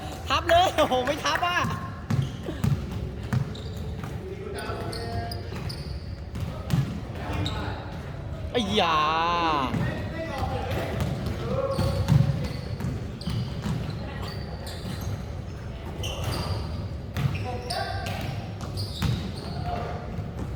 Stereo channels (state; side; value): identical; both; correlation 1.00